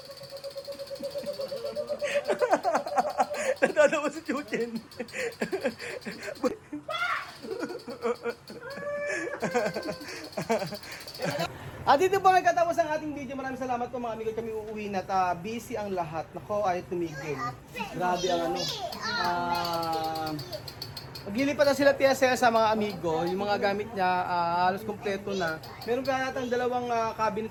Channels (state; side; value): identical; both; correlation 1.00